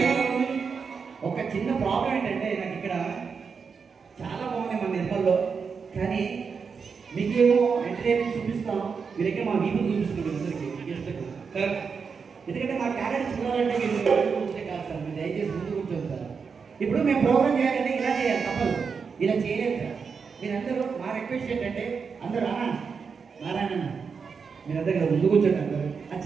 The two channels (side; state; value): left; quieter; 5.7 dB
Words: ఒక చిన్న ప్రాబ్లం ఏంటంటే నాకు ఇక్కడ చాలా బాగుంది మన నిర్మల్లో కానీ మీకేమో ఎంటర్టైన్మెంట్ చూపిస్తాం మీరైతే మా వీపులు చూపిస్తున్నారు అందరికీ కరెక్ట్ ఎందుకంటే మా క్యారెక్టర్ చూడాలంటే మీరు కూర్చోే కాదు సార్ మీరు దయచేసి ముందు కూర్చోండి సార్ ఇప్పుడు మేము ప్రోగ్రామ్ చేయాలంటే ఇలా చేయాలి తప్పదు ఇలా చేయలేదు సార్ మీరందరూ మా రిక్వెస్ట్ ఏంటంటే అందరూ నారాయణ మీరందరూ కదా ముందు కూర్చోండి అందరూ ఆ